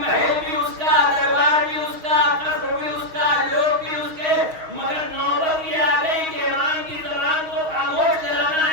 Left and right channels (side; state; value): left; late; 6.3 ms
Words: بھی اس کا, دربار بھی اس کا, قصر بھی اس کا, لوگ بھی اس کے, مگر نوبت یہ آ گئی کہ امام کی زبان کو خاموش کرانا